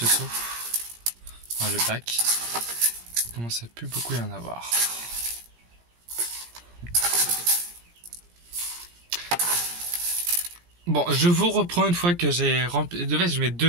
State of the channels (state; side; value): late; left; 17 ms